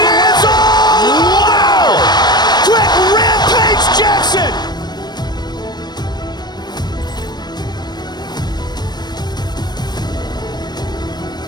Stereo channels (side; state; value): right; late; 0.20 ms